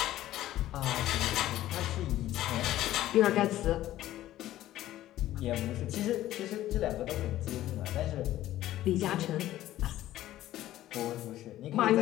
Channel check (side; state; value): right; quieter; 14.1 dB